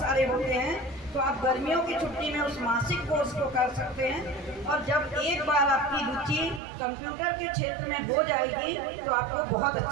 होते हैं, तो आप गर्मियों की छुट्टी में उस मासिक कोर्स को कर सकते हैं। और जब एक बार आपकी रुचि कंप्यूटर के क्षेत्र में हो जाएगी तो आपको बहुत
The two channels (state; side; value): drops out; left; at 6.6 s